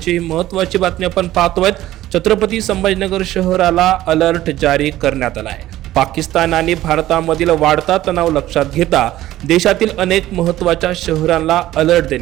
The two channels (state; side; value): quieter; left; 14.7 dB